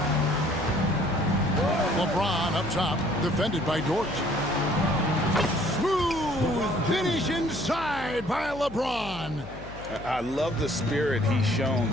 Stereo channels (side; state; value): left; noise; hum, 15 dB below the sound